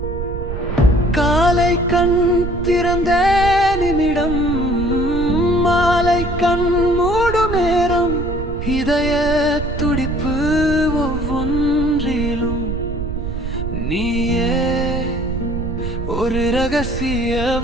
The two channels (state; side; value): noise; right; rumble, 5 dB below the sound